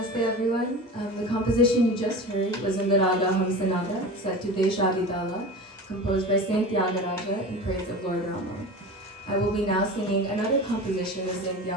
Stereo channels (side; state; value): both; normal; correlation 0.32